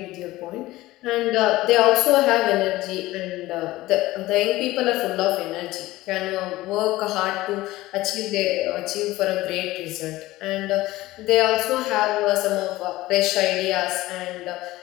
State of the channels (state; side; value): quieter; right; 17.7 dB